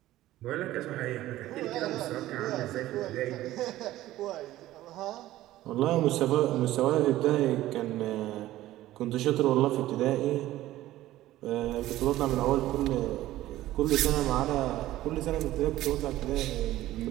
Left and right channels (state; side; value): quieter; left; 15.2 dB